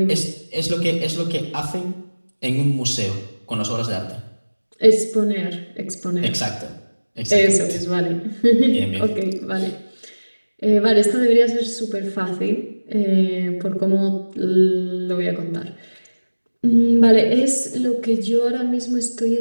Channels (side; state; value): both; inverted; correlation -1.00